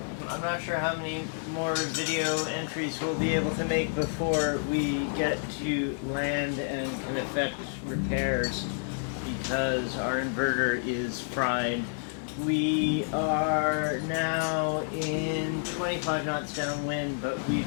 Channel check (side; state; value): right; silent; digital silence